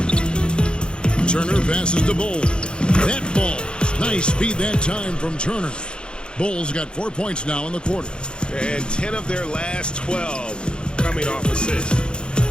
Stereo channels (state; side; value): late; right; 0.052 ms